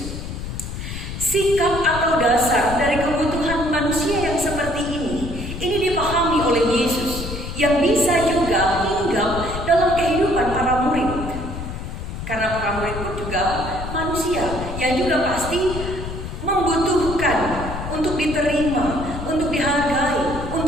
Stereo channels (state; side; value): noise; left; rumble, 7 dB below the sound